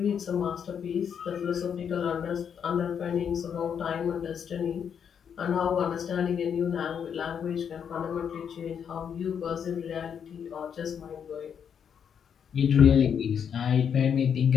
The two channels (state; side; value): quieter; right; 7.7 dB